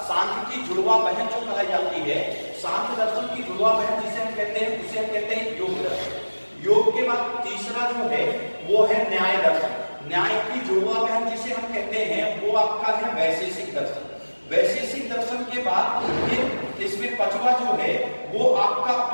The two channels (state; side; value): inverted; both; correlation -1.00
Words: सांख्य की जुड़वा बहन जो कही जाती है, सांख्य दर्शन की जुड़वा बहन जिसे हम कहते हैं, उसे हम कहते हैं योग दर्शन। योग के बाद तीसरा जो है वो है न्याय दर्शन। न्याय की जुड़वा बहन जिसे हम कहते हैं वो आपका है वैशेषिक दर्शन। वैशेषिक दर्शन के बाद फिर इसमें 5वां जो है वो आपका